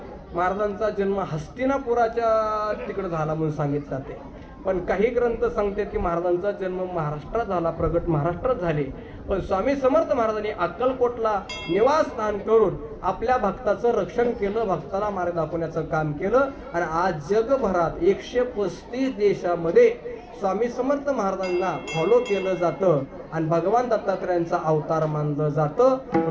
महाराजांचा जन्म हस्तिनापुराच्या तिकडे झाला म्हणून सांगितलं जाते. पण काही ग्रंथ सांगतात की महाराजांचा जन्म महाराष्ट्रात झाला, प्रगट महाराष्ट्रात झाले. पण स्वामी समर्थ महाराजांनी अक्कलकोटला निवासस्थान करून आपल्या भक्ताचं रक्षण केलं, भक्ताला मार्ग दाखवण्याचं काम केलं. आणि आज जगभरात 135 देशामध्ये स्वामी समर्थ महाराजांना फॉलो केलं जातं आणि भगवान दत्तात्रेयांचा अवतार मानलं जातं.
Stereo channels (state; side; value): identical; both; correlation 1.00